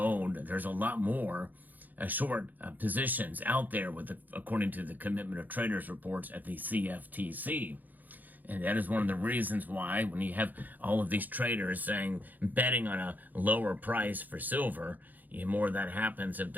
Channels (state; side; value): late; left; 0.084 ms